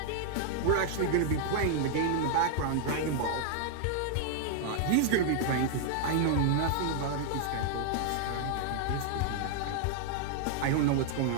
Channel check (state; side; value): different; both; correlation 0.00